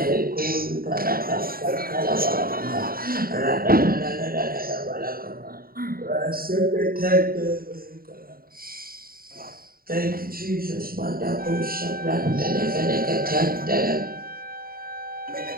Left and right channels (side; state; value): left; late; 0.43 ms